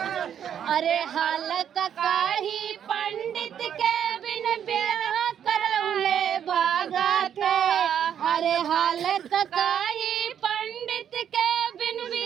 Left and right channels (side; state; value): left; quieter; 9.1 dB